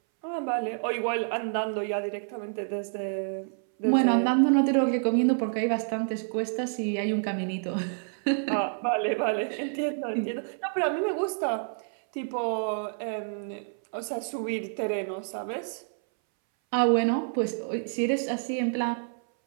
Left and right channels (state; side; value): silent; left; 59 dB below the other